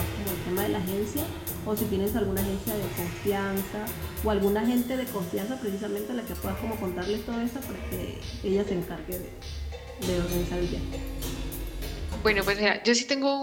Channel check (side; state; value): both; identical; correlation 1.00